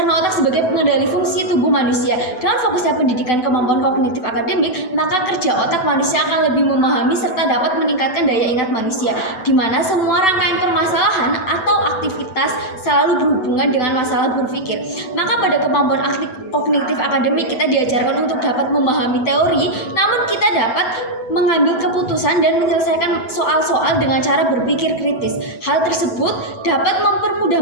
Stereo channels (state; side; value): late; right; 8.0 ms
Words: otak sebagai pengendali fungsi tubuh manusia. Dengan fokusnya pendidikan kemampuan kognitif akademik, maka kerja otak manusia akan lebih memahami serta dapat meningkatkan daya ingat manusia, di mana semua rangkaian permasalahan atau aktivitas selalu berhubungan dengan masalah berpikir. Maka pada kemampuan kognitif akademik kita diajarkan untuk dapat memahami teori, namun kita dapat mengambil keputusan dan menyelesaikan soal-soal dengan cara berpikir kritis. Hal tersebut dapat